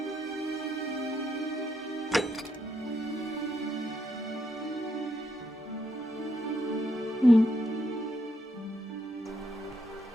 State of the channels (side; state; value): both; normal; correlation 0.78